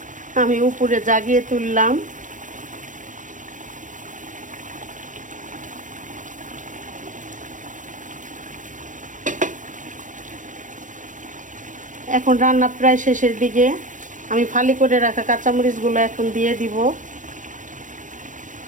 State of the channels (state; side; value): late; left; 0.37 ms